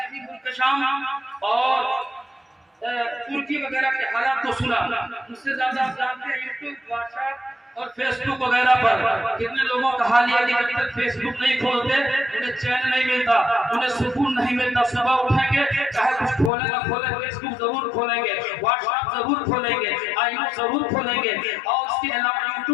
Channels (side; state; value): right; drops out; at 16.5 s